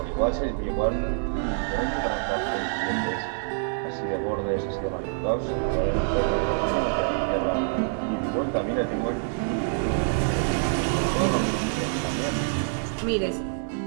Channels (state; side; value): silent; left; digital silence